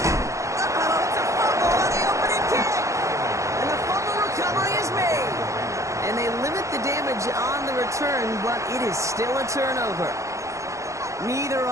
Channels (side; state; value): left; late; 0.15 ms